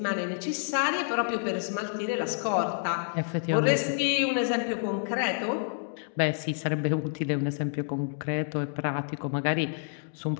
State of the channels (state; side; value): silent; right; digital silence